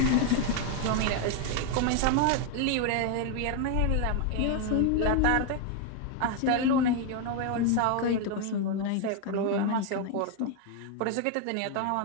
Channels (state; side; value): different; both; correlation 0.01